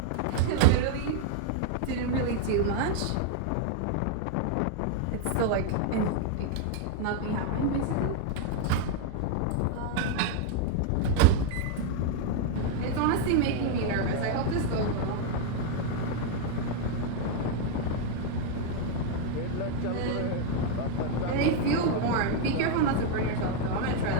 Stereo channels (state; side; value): different; both; correlation 0.00